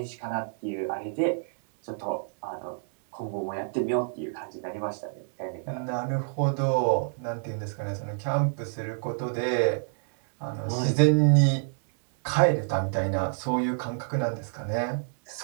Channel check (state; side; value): silent; left; digital silence